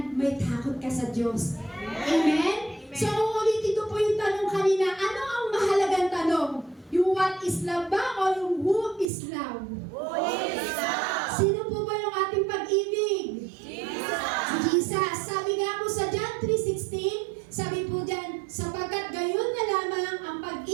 may takot ka sa Diyos. Amen? So uulitin ko po yung tanong kanina, ano ang mahalagang tanong? Yung what is love ba o yung who is love? Who is love? Sino po ba yung ating pag-ibig? Jesus. Si Jesus. Sabi nga po sa John 3:16, sabi po dyan, sapagkat gayon na lamang ang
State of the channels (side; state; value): left; drops out; at 9.1 s